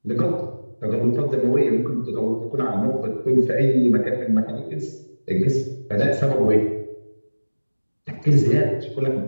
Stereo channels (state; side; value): inverted; both; correlation -1.00